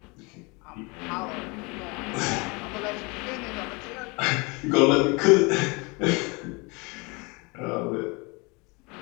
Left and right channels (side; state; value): right; quieter; 28.3 dB